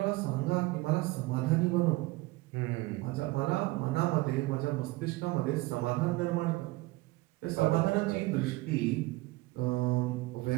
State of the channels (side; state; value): left; quieter; 20.8 dB